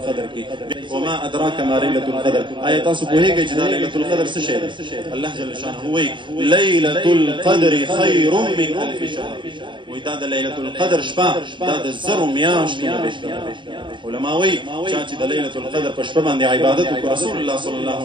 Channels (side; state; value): left; late; 0.23 ms